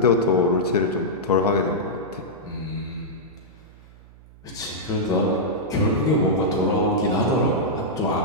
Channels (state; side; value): noise; right; hum, 23 dB below the sound